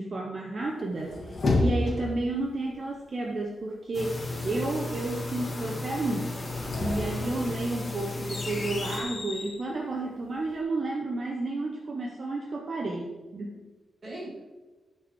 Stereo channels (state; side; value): normal; both; correlation 0.86